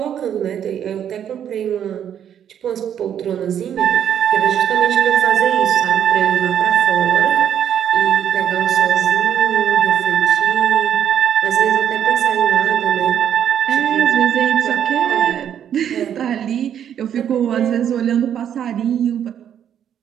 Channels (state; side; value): quieter; left; 9.4 dB